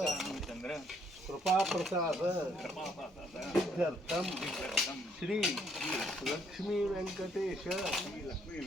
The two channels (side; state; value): both; normal; correlation 0.68